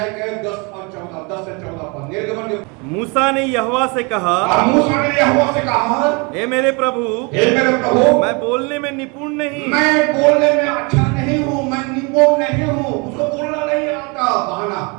के 10 से 14 पर निर्गमन के मूसा ने यहोवा से कहा, मूसा ने यहोवा से कहा, हे मेरे प्रभु, मैं बोलने में निपुण नहीं, मैं बोलने में अच्छा नहीं हूं, मैं निपुण नहीं हूं, उसको बोलना नहीं आता। बहाना,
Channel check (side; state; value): left; quieter; 30.6 dB